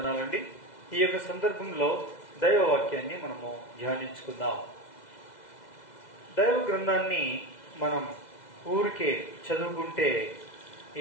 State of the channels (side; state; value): right; late; 2.0 ms